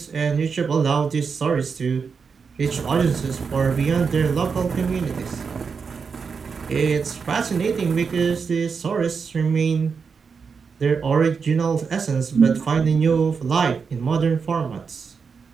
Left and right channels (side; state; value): left; quieter; 5.6 dB